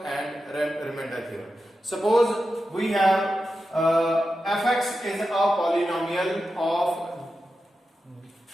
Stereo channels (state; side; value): normal; both; correlation 0.90